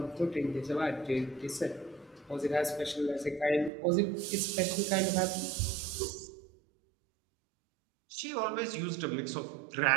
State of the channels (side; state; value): left; drops out; at 3.7 s